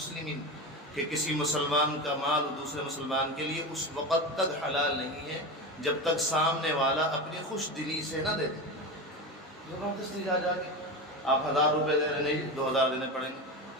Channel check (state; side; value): normal; both; correlation 0.23